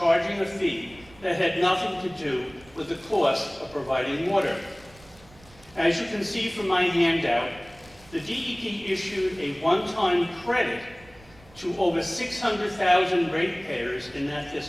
a fee that had nothing to do with the cost of providing water. As you can see from my handout, the DEP issued a one-time credit to over 600,000 ratepayers in that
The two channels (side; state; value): right; noise; rumble, 25 dB below the sound